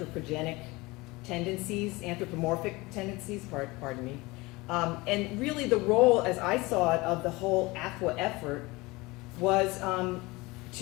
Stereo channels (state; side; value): quieter; right; 22.7 dB